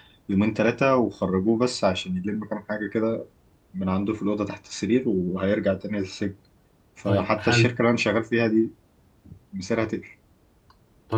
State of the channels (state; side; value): identical; both; correlation 1.00